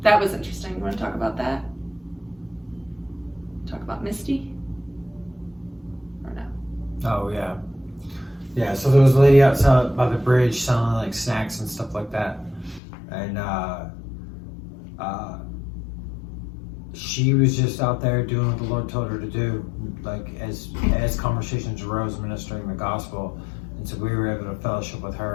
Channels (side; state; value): right; drops out; at 12.8 s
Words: that was interesting. You want to talk about that? Talk about Misty? Or no? Oh, yeah. Yeah, so there was a lady outside by the bridge selling like snacks and stuff like that. And she was just out there doing what the Lord told her to do, like as conversations arose, ministering the gospel. And so we were able to fellowship with